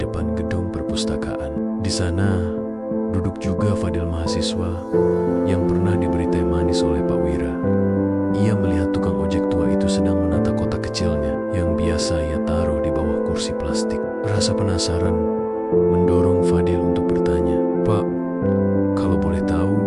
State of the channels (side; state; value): both; identical; correlation 1.00